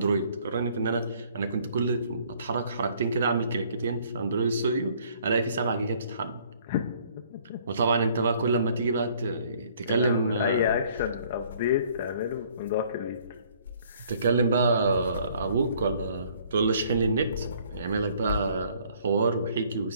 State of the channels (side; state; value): both; inverted; correlation -0.60